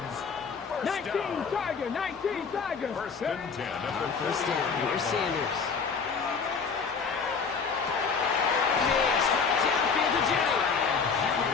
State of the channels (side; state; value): right; quieter; 5.5 dB